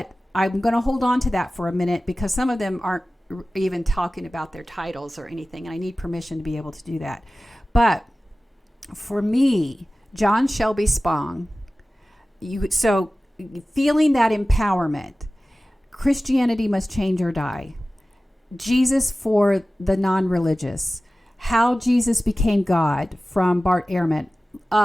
I'm going to hold on to that for a minute, because some of them aren't even talking about their titles or anything, and I need permission to be able to do that. But for me, John Shelby Spong, so feeling that empowerment, Christianity Must Change or Die, Jesus for the non-religious, How Jesus Became God from Bart Ehrman.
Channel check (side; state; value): both; normal; correlation 0.97